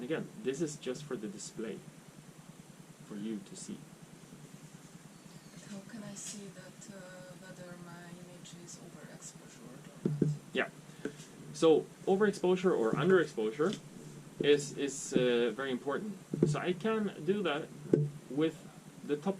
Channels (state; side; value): identical; both; correlation 1.00